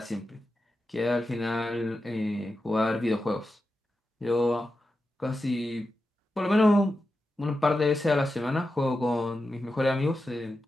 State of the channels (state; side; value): normal; both; correlation 0.90